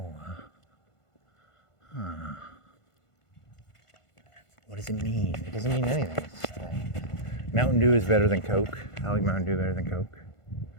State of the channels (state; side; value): late; right; 1.5 ms